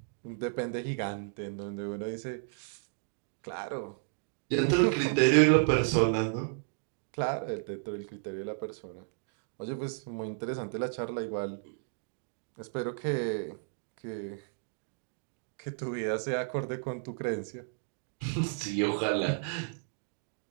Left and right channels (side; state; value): left; silent; digital silence